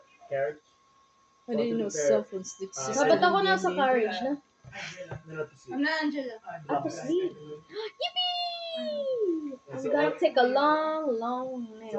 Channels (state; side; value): identical; both; correlation 1.00